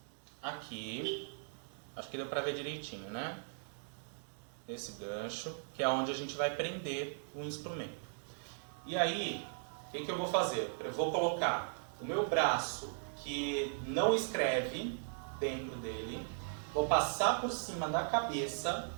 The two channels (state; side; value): silent; left; digital silence